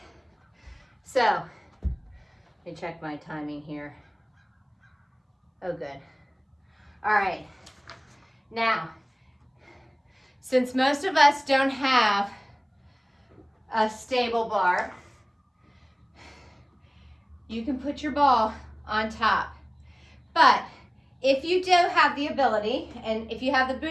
so let me check my timing here. Oh, good. All right, now, since most of us don't have a stable bar, you can put your ball on top. But if you do have the ability, and if you have the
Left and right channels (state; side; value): identical; both; correlation 1.00